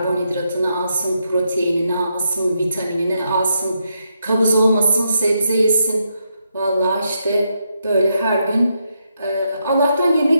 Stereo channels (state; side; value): inverted; both; correlation -0.81